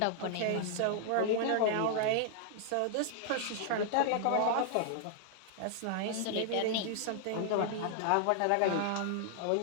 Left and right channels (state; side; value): different; both; correlation -0.01